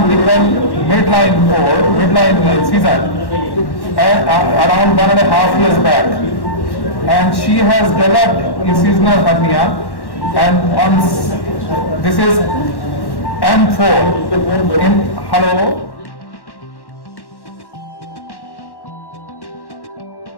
midline season around 1.5 years back. And she has developed incisional hernia, and this is M4. Hello.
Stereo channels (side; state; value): right; late; 1.1 ms